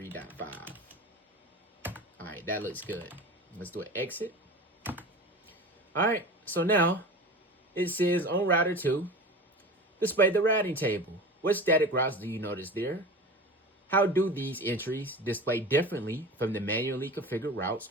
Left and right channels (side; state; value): both; normal; correlation 0.33